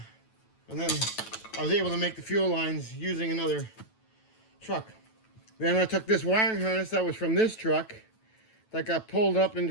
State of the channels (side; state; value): right; late; 9.1 ms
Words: and then I was able to make the fuel lines using another truck. Then I took this wiring harness that was from this truck that got pulled up